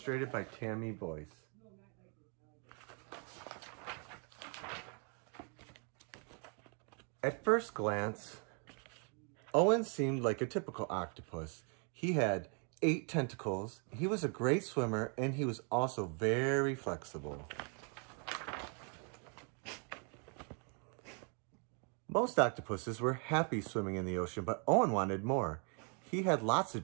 by Tammy Boyce. At first glance, Owen seemed like a typical octopus. He had 8 tentacles, he was a great swimmer, and he was also very flexible. Most octopuses were happy swimming in the ocean, but Owen wanted more. He had lots of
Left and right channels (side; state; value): left; quieter; 38.6 dB